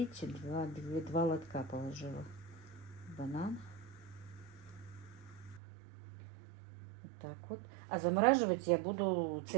два лотка положила. Банан. Вот так вот. А замораживать я буду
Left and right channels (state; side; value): drops out; left; at 5.6 s